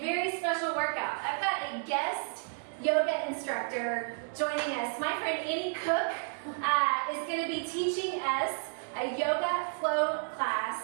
special workout. I've got a guest yoga instructor joining us. My friend Koch is going to be teaching us a yoga flow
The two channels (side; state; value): left; silent; 57 dB below the other